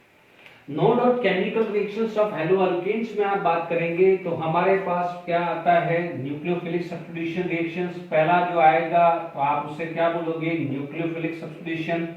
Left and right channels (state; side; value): identical; both; correlation 1.00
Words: no doubt chemical reactions of haloalkanes में आप बात करेंगे तो हमारे पास क्या आता है, न्यूक्लियोफिलिक सब्स्टिट्यूशन रिएक्शंस। पहला जो आएगा तो आप उसे क्या बोलोगे, nucleophilic substitution.